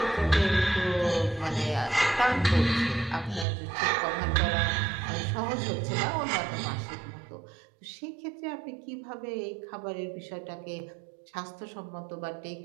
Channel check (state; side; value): drops out; left; at 3.5 s